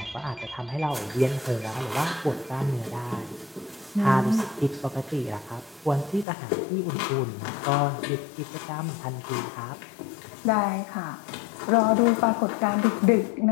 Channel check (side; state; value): right; drops out; at 6.2 s